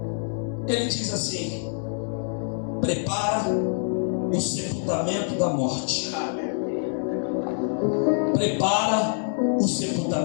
ele diz assim: prepara o sepultamento da morte. Prepara o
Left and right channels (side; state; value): right; silent; 61 dB below the other